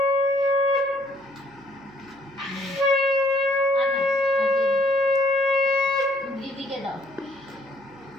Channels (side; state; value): right; noise; hum, 29 dB below the sound